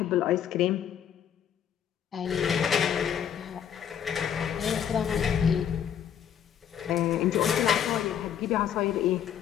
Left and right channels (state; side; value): quieter; right; 9.0 dB